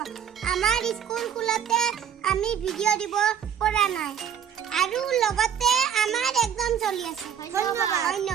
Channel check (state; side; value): quieter; left; 8.7 dB